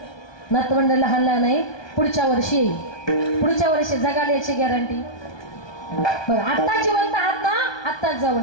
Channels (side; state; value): right; late; 1.2 ms